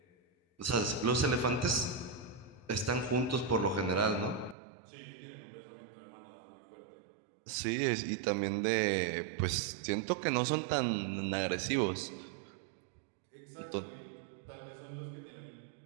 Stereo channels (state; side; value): drops out; left; at 4.5 s